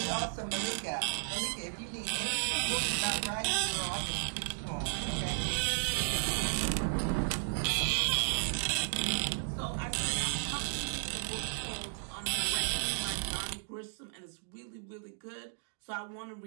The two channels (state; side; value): silent; left; digital silence